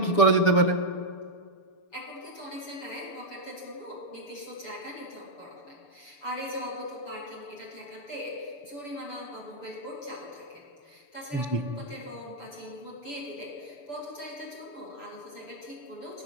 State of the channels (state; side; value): late; right; 6.8 ms